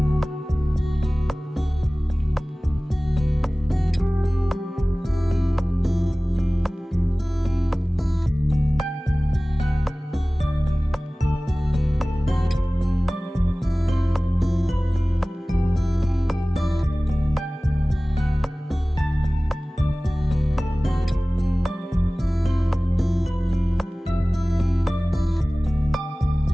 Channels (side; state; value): both; normal; correlation 0.98